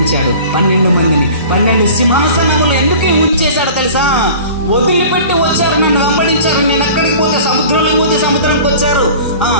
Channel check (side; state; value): both; inverted; correlation -0.42